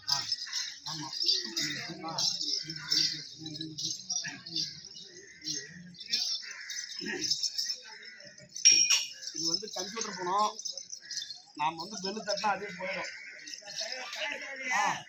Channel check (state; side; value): identical; both; correlation 1.00